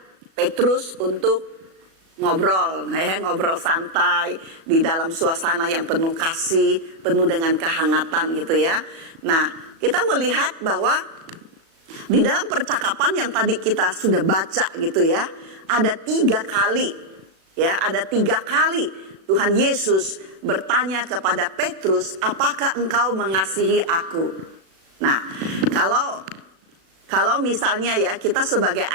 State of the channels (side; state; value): left; late; 37 ms